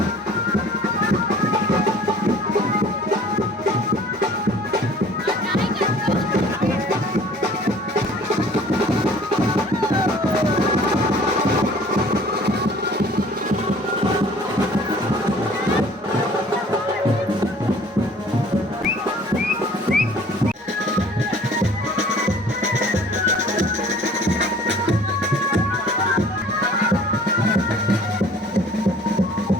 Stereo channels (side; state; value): both; normal; correlation 0.51